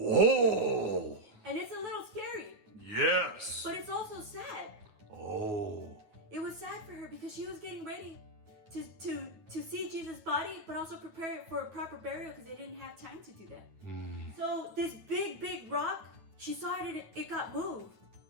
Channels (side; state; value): left; late; 9.3 ms